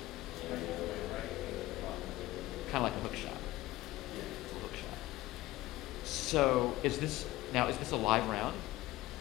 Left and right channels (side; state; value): right; quieter; 17.5 dB